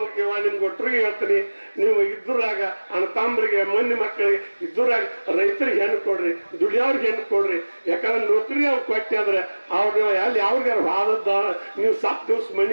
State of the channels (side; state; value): both; inverted; correlation -1.00